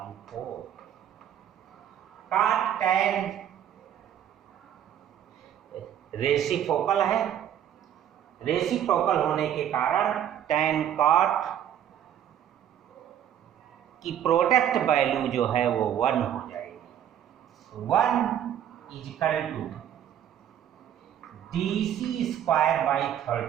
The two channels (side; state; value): left; quieter; 10.2 dB